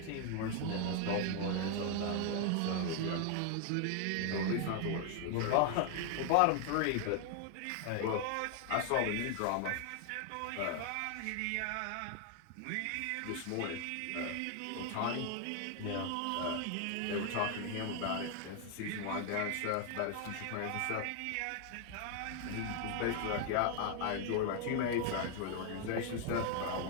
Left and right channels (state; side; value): different; both; correlation 0.00